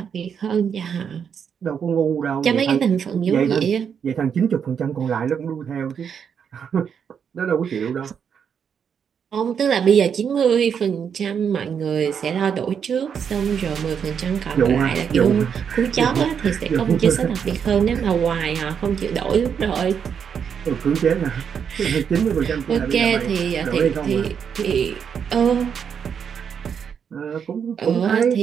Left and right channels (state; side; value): quieter; left; 7.4 dB